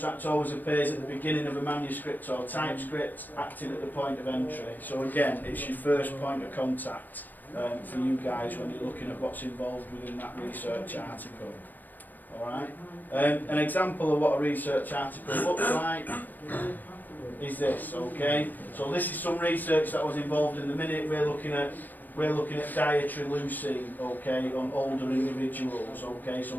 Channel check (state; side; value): late; right; 0.088 ms